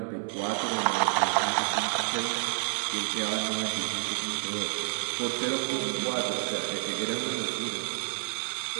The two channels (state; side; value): silent; left; digital silence